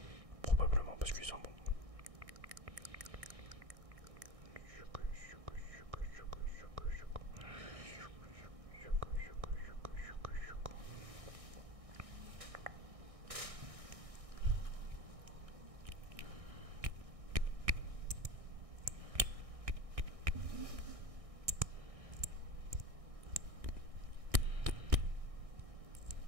Probablement parce qu'ils sont bons.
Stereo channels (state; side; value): late; left; 1.6 ms